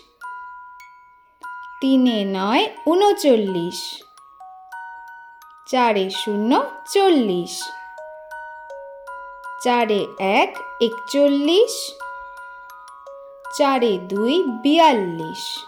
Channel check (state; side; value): identical; both; correlation 1.00